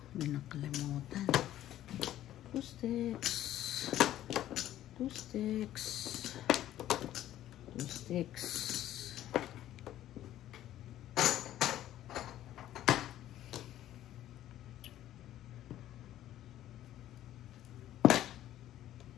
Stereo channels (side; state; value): right; quieter; 12.9 dB